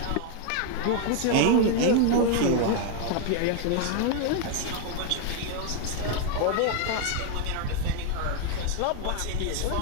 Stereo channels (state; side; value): different; both; correlation 0.00